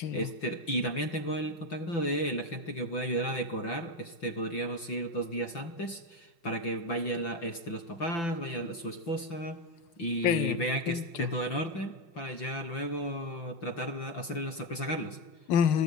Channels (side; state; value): right; late; 5.9 ms